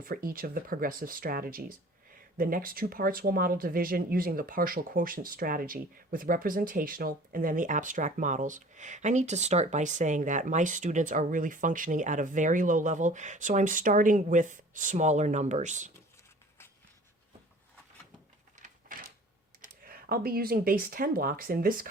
for each of the progressive strategies. The next 2 parts will model division using the partial quotient strategy with representational and then the abstract models. I need to start by saying that my students are really functioning at a very low level, so I'm starting with smaller numbers. I'll be using base 10 blocks in this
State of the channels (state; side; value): normal; both; correlation 0.47